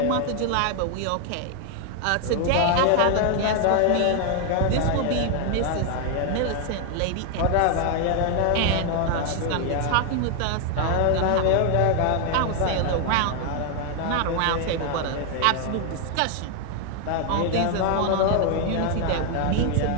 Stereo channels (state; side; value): different; both; correlation 0.00